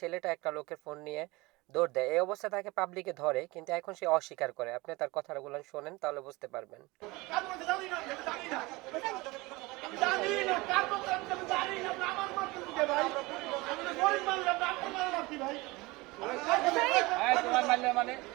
একটা লোকের ফোন নিয়ে দৌড় দেয়। এই অবস্থা তাকে পাবলিকে ধরে, কিন্তু এখন সে অস্বীকার করে। আপনি তার কথাগুলো শোনেন, তাহলে বুঝতে পারবেন। তোমার মারলে মানে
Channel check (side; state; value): left; quieter; 22.7 dB